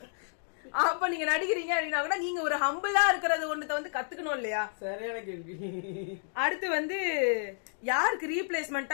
அப்ப நீங்க நடிக்கிறீங்க அப்படின்னா கூட நீங்க ஒரு ஹம்பிளா இருக்கிறது ஒண்ணுத்த வந்து கத்துக்கணும் இல்லையா? சரியான கேள்வி. அடுத்து வந்து யாருக்கு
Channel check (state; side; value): silent; right; digital silence